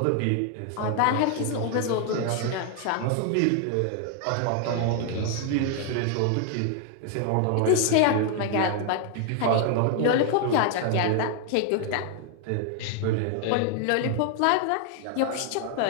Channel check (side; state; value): both; different; correlation 0.00